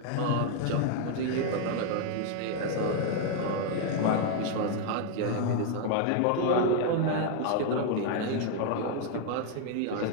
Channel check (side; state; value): both; different; correlation 0.00